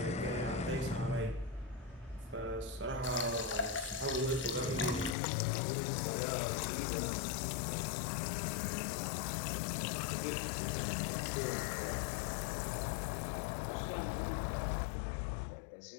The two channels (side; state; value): right; drops out; at 5.2 s